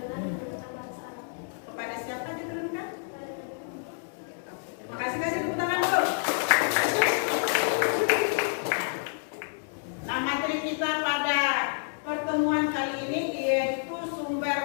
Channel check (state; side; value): silent; right; digital silence